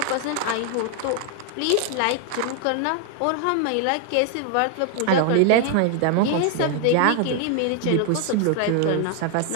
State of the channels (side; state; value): both; different; correlation 0.00